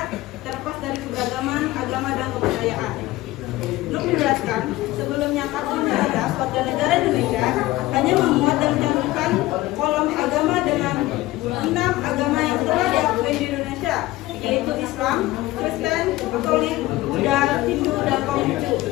terlepas dari keberagaman agama dan kepercayaan. Untuk menjelaskan, sebelumnya kartu identitas warga negara Indonesia hanya memuat dan mencantumkan kolom agama dengan 6 agama yang telah diakui di Indonesia, yaitu Islam, Kristen, Katolik, Buddha, Hindu, dan Konghucu.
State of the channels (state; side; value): quieter; right; 17.9 dB